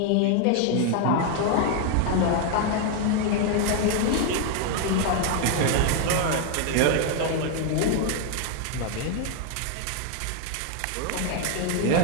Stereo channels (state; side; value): different; both; correlation 0.00